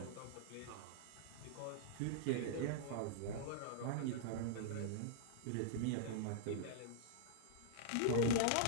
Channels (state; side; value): different; both; correlation -0.02